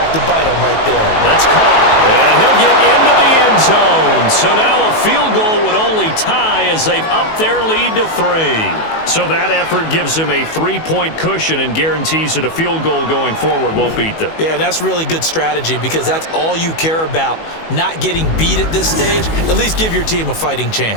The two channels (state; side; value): late; right; 19 ms